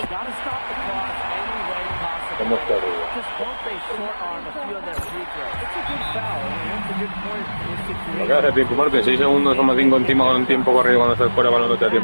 Got to stop the clock any way possible. ¿Cómo está arriba? Just won't they short arm a few of their free throws. It's a good foul. It's a good point. Lo que hace tiempo muerto, en 6 segundos somos 5 encima con un tiempo corrido cuando estás fuera balón no te da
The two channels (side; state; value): both; inverted; correlation -1.00